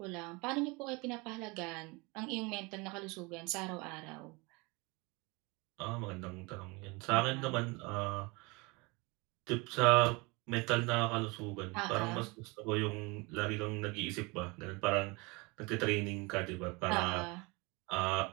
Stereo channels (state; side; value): quieter; left; 26.8 dB